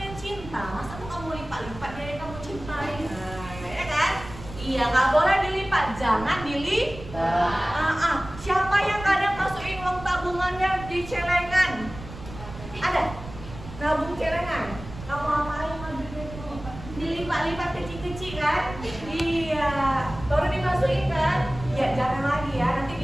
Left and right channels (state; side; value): noise; right; rumble, 13 dB below the sound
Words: cinta, masa tuh kamu lipat-lipat dia yang kamu cintai? Nah, ya kan? Iya, nggak boleh dilipat, jangan dilipat. Siapa yang kadang masukin uang tabungannya di celengan? Ada? Nabung celengan? Kamu apain ngambilnya itu? Dilipat-lipat kecil-kecil kan? Iya, baru dimasukin kan? Ya jangan lagi ya, nanti